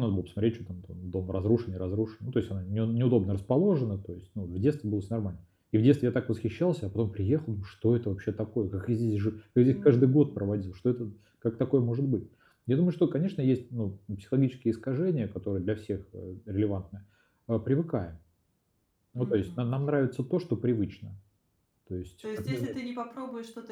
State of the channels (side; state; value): both; identical; correlation 1.00